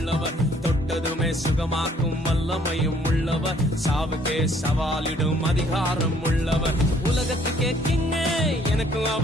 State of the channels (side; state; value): both; normal; correlation 0.62